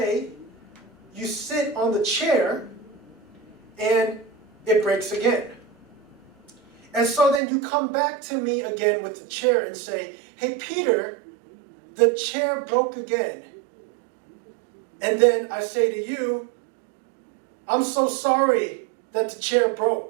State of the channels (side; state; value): left; drops out; at 7.4 s